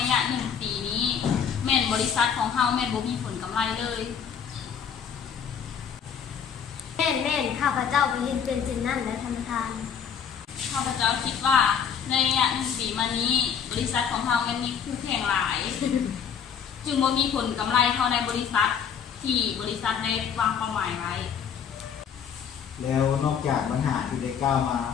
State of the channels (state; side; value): quieter; right; 7.5 dB